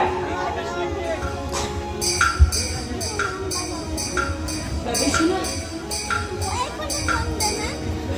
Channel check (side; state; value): both; identical; correlation 1.00